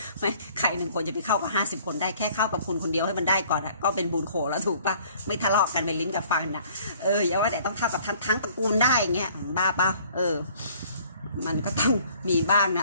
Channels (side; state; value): both; inverted; correlation -0.56